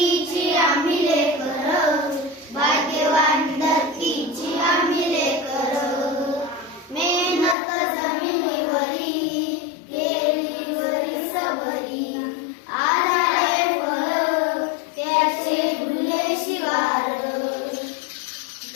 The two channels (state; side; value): drops out; right; at 7.6 s